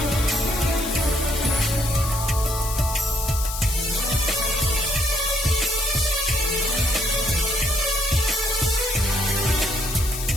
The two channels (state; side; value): noise; left; hiss, 7 dB below the sound